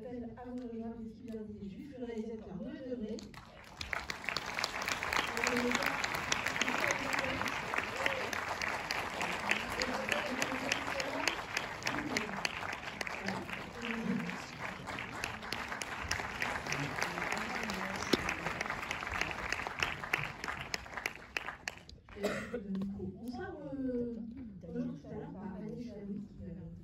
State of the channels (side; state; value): both; identical; correlation 1.00